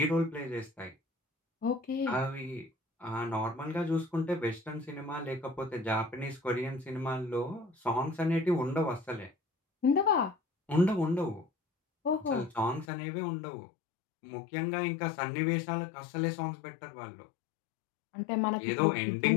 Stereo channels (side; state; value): right; drops out; at 12.9 s